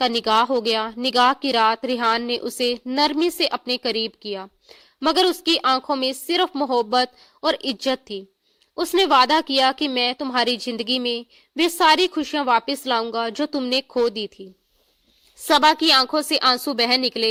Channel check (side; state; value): both; identical; correlation 1.00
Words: निगाह हो गया। निगाह की रात रिहान ने उसे नरमी से अपने करीब किया, मगर उसकी आंखों में सिर्फ मोहब्बत और इज्जत थी। उसने वादा किया कि मैं तुम्हारी जिंदगी में वे सारी खुशियां वापस लाऊंगा जो तुमने खो दी थी। सबा की आंखों से आंसू बह